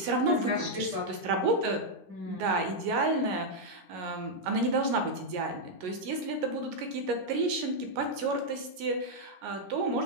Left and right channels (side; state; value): left; late; 11 ms